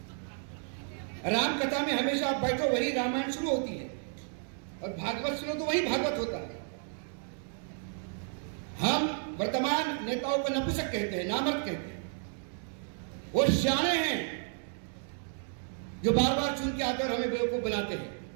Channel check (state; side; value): silent; left; 56 dB below the other